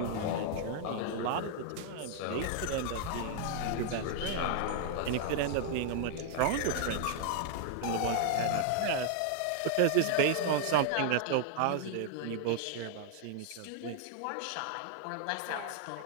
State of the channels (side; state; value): both; different; correlation -0.01